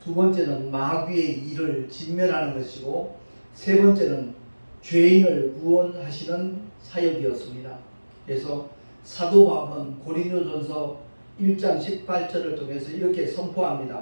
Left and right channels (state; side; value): inverted; both; correlation -1.00